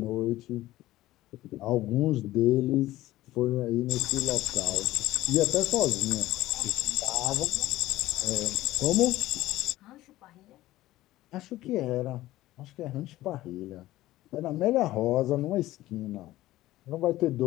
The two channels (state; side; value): quieter; right; 16.1 dB